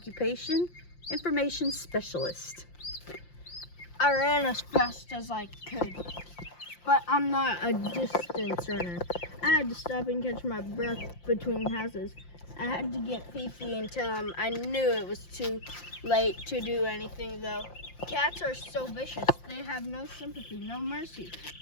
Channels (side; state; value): right; late; 5.7 ms